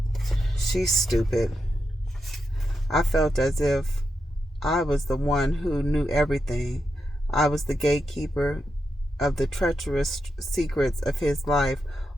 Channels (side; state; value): both; normal; correlation 0.86